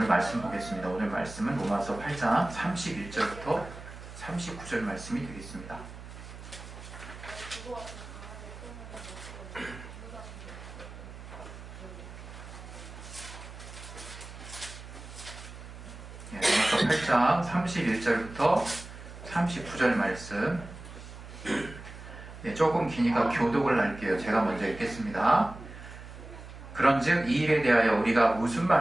오늘 말씀 보겠습니다. 오늘 말씀은 로마서 8장 31절부터 39절 말씀이 되겠습니다. 로마서 8장 31절부터 39절 말씀. 조금 기니까 교독을 할게요. 제가 먼저 읽겠습니다. 그런즉 이 일에 대하여 우리가 무슨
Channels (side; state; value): right; noise; hum, 14 dB below the sound